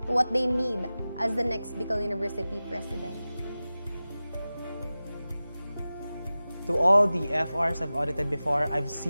to what they need as the next Bicol University President. To all the FRs I've audited before, I've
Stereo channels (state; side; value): inverted; both; correlation -0.96